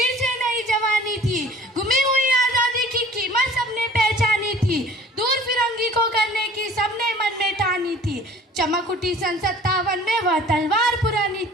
से नई जवानी थी। गुमी हुई आजादी की कीमत सबने पहचानी थी, दूर फिरंगी को करने की सबने मन में ठानी थी। चमक उठी सन 57 में वह तलवार पुरानी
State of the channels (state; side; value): normal; both; correlation 0.48